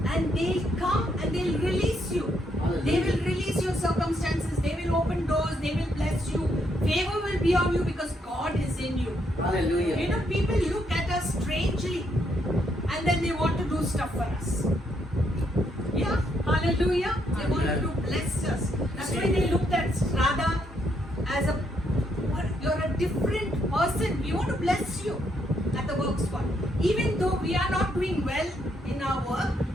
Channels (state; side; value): normal; both; correlation 0.75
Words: and they'll come and they'll release you. They will release your circumstances, they will open doors, they will bless you. Favor will be on you because God is in you. Hallelujah. You know, people look at us strangely and then they want to do stuff for us. Yeah, hallelujah. They wanted to bless us. That's why they looked at Radha as a, what, you're a different person. We want to bless you at the work spot. Even though we are not doing well in our work,